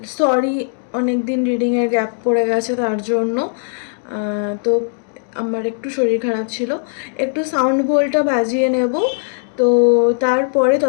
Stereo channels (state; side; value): silent; right; digital silence